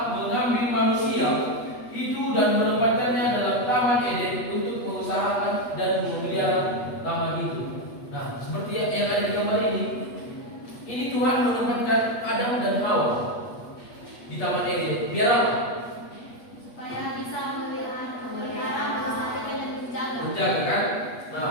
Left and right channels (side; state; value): right; late; 8.3 ms